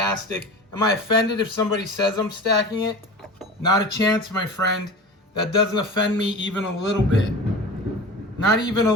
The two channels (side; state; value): both; normal; correlation 0.34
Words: Am I offended if somebody says I'm stacking it? Not a chance, my friend. That doesn't offend me even a little bit. Not even a